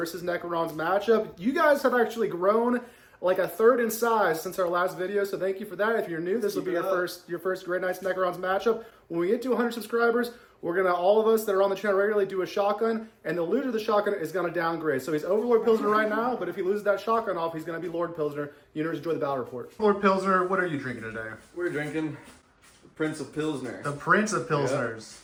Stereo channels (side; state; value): both; identical; correlation 1.00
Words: Necrons matchup. You guys have actually grown like a third in size since our last video, so thank you for that. If you're new, this will be your first Grey Knights Necrons matchup. When we get to 100 subscribers, we're gonna, all of us that are on the channel regularly, do a shotgun, and the loser of the shotgun is gonna downgrade. So he's Overlord Pilsner right now, but if he loses that shotgun off, he's gonna be Lord Pilsner. You know, enjoy the battle report. Lord Pilsner, what are you drinking today? We're drinking the Prince of Pilsner. The Prince of Pilsners.